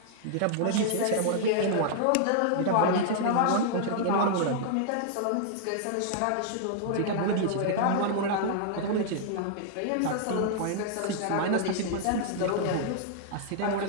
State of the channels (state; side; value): different; both; correlation -0.01